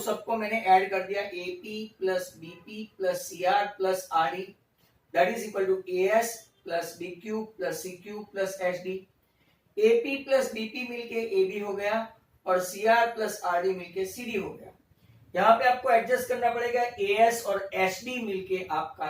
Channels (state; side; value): identical; both; correlation 1.00